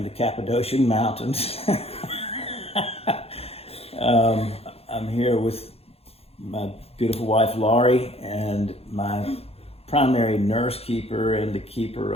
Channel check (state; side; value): late; right; 0.29 ms